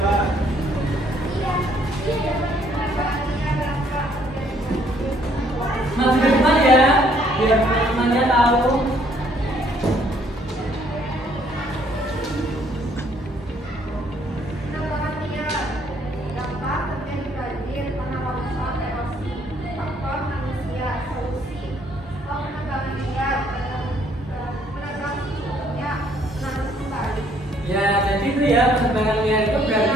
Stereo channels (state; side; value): normal; both; correlation 0.65